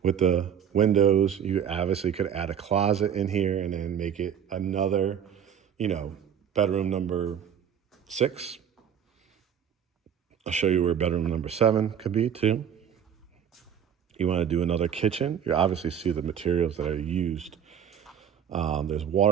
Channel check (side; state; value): left; quieter; 8.6 dB